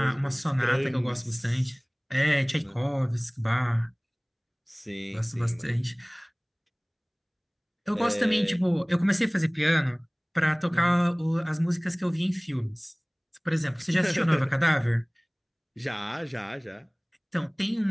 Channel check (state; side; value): identical; both; correlation 1.00